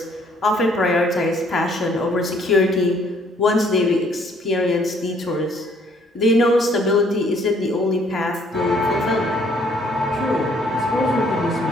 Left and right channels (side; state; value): both; normal; correlation 0.63